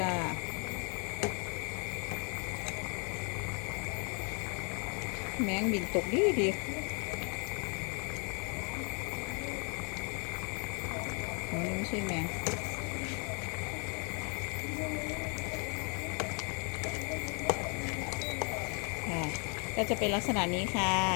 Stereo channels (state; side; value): quieter; right; 35.8 dB